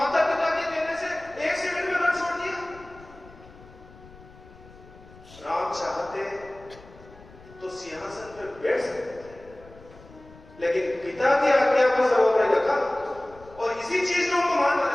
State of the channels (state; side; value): noise; left; rumble, 22 dB below the sound